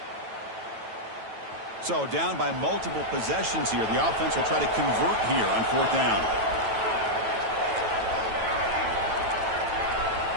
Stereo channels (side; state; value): left; late; 9.1 ms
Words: So down by multiple possessions here. The offense will try to convert here on fourth down.